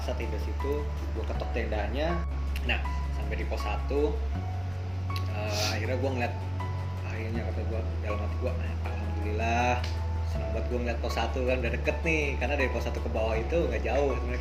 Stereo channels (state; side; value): noise; right; rumble, 20 dB below the sound